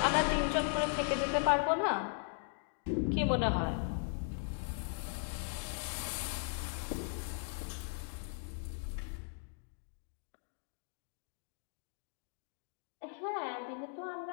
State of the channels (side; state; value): right; silent; 52 dB below the other